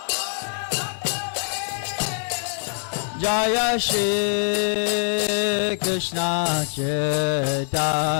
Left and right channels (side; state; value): right; silent; digital silence